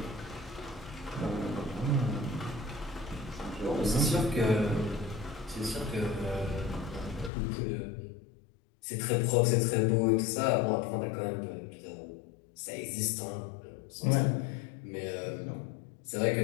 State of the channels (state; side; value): drops out; right; at 7.3 s